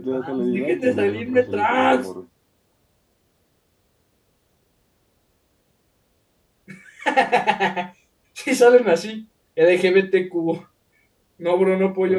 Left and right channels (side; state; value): both; identical; correlation 1.00